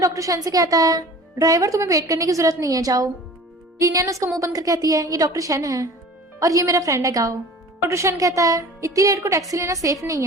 शन से कहता है ड्राइवर तुम्हें वेट करने की जरूरत नहीं है, जाओ। लिनियन उसका मुंह बंद कर कहती है ये डॉक्टर शन है और ये मेरा फ्रेंड है गाँव। डॉक्टर शन कहता है इतनी लेट को टैक्सी लेना सेफ नहीं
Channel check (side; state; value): both; normal; correlation 0.43